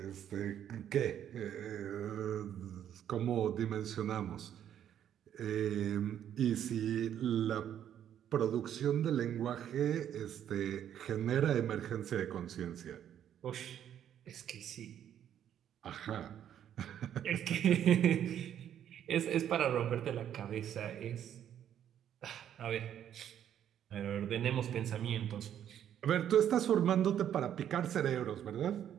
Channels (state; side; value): quieter; left; 10.1 dB